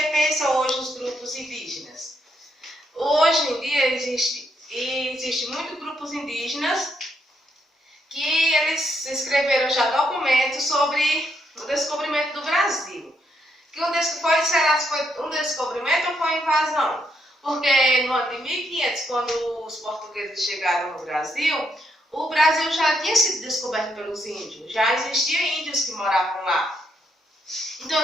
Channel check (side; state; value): both; normal; correlation 0.77